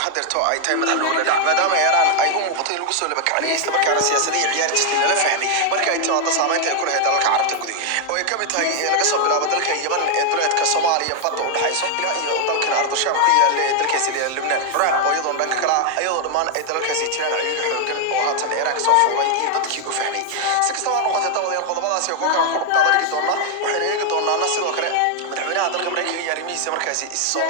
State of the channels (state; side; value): different; both; correlation 0.00